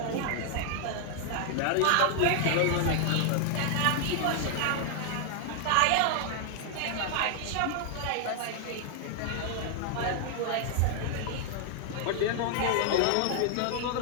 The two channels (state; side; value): different; both; correlation 0.00